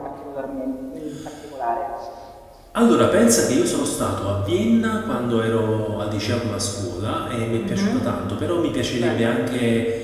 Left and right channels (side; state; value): both; identical; correlation 1.00